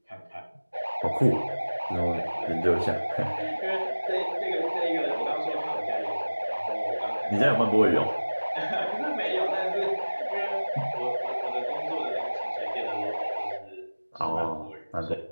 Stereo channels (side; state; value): both; inverted; correlation -1.00